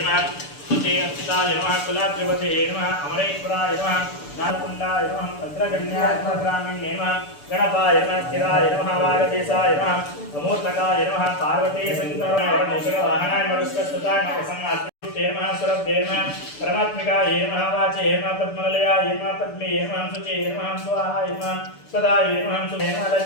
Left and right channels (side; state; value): right; late; 6.9 ms